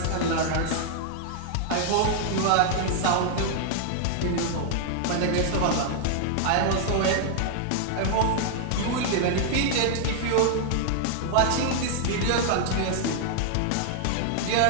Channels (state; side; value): different; both; correlation 0.00